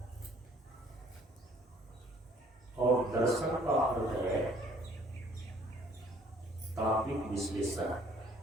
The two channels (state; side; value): normal; both; correlation 0.58